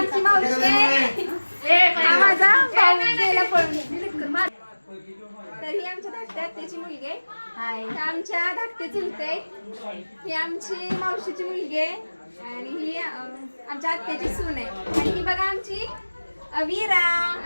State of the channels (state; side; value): inverted; both; correlation -1.00